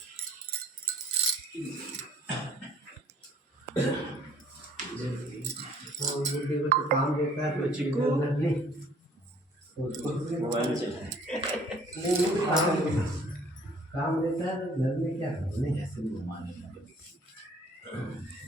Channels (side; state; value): both; normal; correlation 0.56